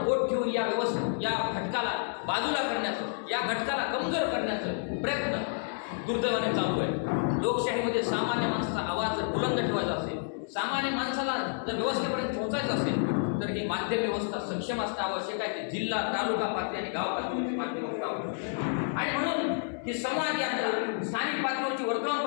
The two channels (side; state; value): right; silent; digital silence